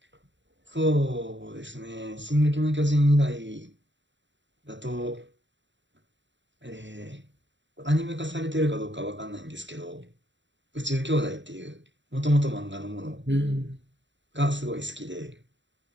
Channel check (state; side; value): late; left; 0.53 ms